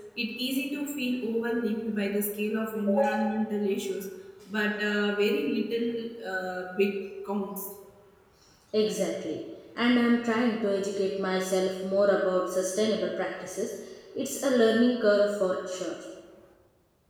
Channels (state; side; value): identical; both; correlation 1.00